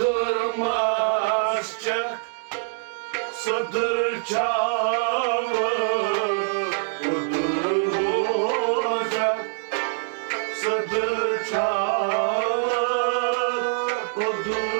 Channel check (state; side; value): silent; left; digital silence